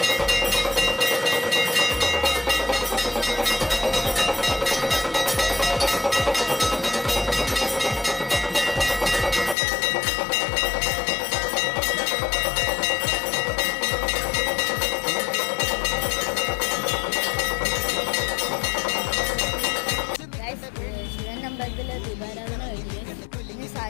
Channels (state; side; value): drops out; right; at 9.6 s